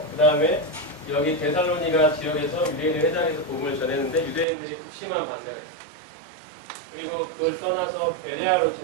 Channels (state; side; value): drops out; left; at 4.5 s